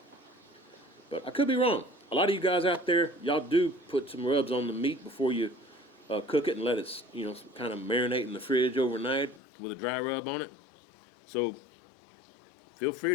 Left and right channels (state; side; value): drops out; right; at 9.4 s